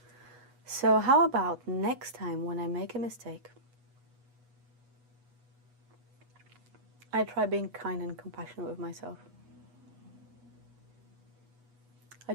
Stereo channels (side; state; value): left; late; 8.2 ms